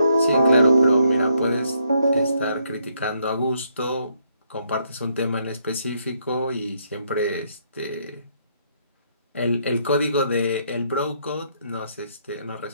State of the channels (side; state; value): both; inverted; correlation -0.73